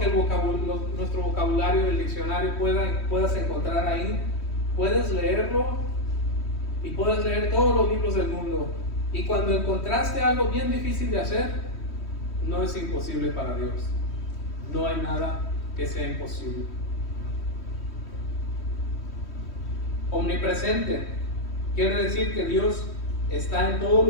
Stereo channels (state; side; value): late; right; 3.1 ms